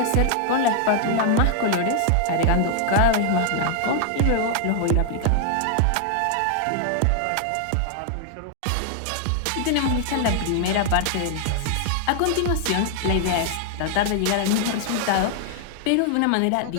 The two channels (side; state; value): both; different; correlation 0.00